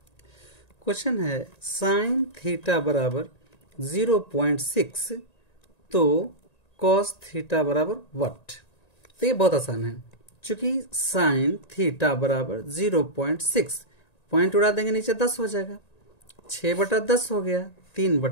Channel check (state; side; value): late; right; 1.9 ms